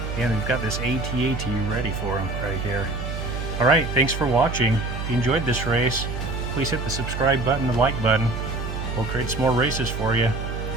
And we've got this AT-AT ready for him right here. Alright, thanks for watching. If you enjoyed this race, please hit the subscribe button, the like button. We'll create some more races for you.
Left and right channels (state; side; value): noise; right; hum, 5 dB below the sound